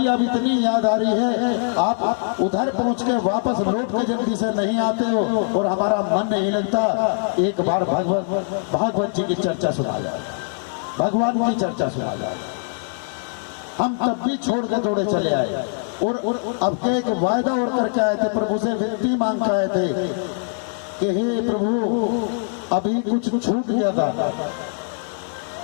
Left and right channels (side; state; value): right; silent; digital silence